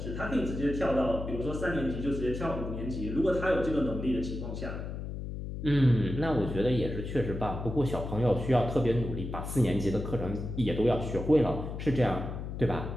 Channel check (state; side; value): noise; left; hum, 6 dB below the sound